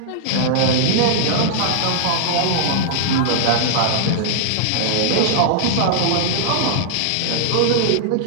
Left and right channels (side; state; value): both; different; correlation -0.01